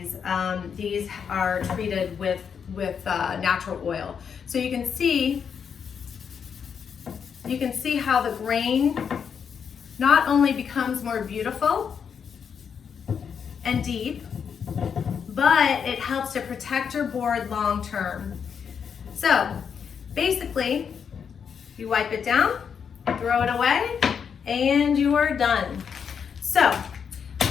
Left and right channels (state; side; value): quieter; right; 7.0 dB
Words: These are treated with natural oil. So you can see how the grain not only becomes more beautiful, and deep, but it helps to protect your board long term. So basically, you wipe it down, throw it away, and you are done. So